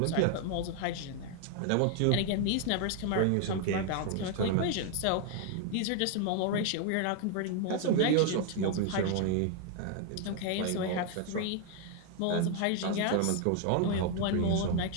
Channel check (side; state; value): both; different; correlation 0.00